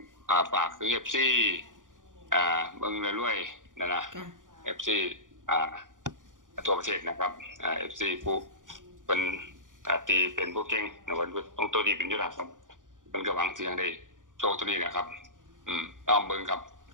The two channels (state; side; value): late; left; 0.88 ms